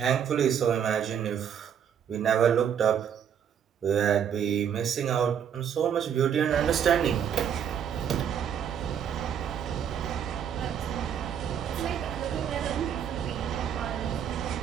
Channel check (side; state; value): left; quieter; 8.5 dB